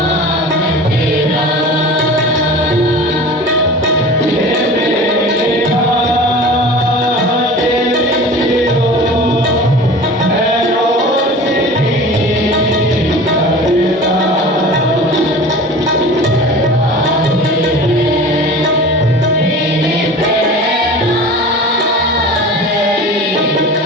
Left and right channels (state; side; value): normal; both; correlation 0.38